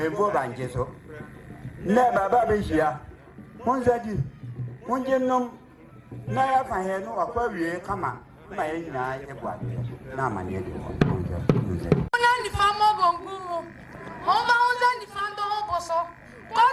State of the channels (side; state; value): both; identical; correlation 1.00